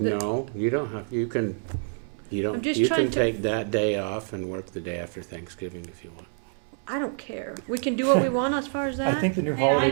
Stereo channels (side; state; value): left; silent; 60 dB below the other